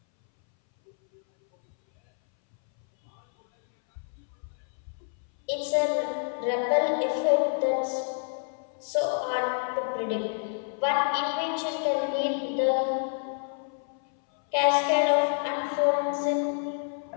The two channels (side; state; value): right; silent; 59 dB below the other